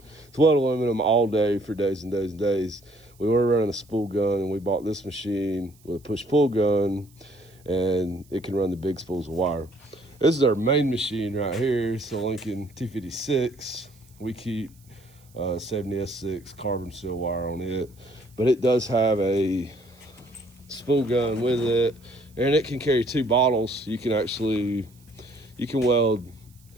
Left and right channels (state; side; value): noise; right; hiss, 30 dB below the sound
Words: weld aluminum all day for days and days and days. We were running a spool gun, and we bought this machine with a push-pull gun, and it can run the big spools of wire. This is our main machine right here. It's a Lincoln 256. We keep 70S6 carbon steel wire on it, but it does have a spool gun with it, and it can carry 2 bottles. You can be